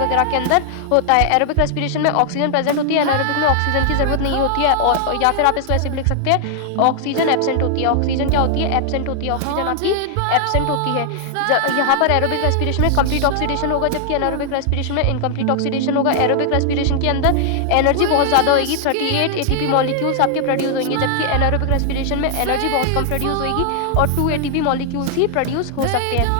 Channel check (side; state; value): both; different; correlation 0.00